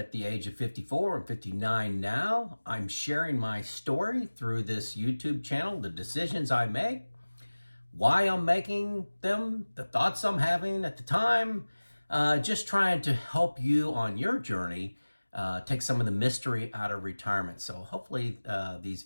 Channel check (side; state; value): both; inverted; correlation -1.00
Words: the age of 54. I'm 59 now. I'm sharing my story through this YouTube channel, the decisions I make, why I'm making them, the thoughts I'm having at the time, just trying to help you on your journey, take some of the mystery out of retirement. So hopefully these